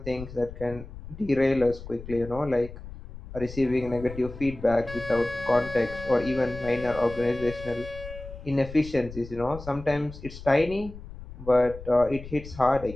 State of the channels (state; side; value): noise; left; rumble, 13 dB below the sound